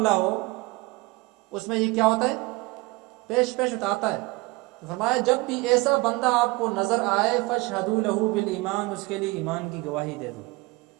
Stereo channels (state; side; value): quieter; left; 23.1 dB